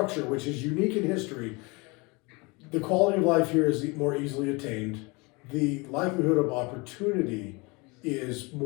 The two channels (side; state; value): right; quieter; 27.3 dB